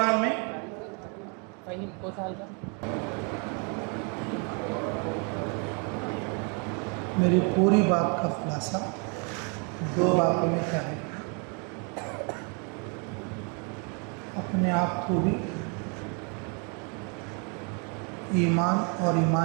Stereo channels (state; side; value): quieter; left; 36.0 dB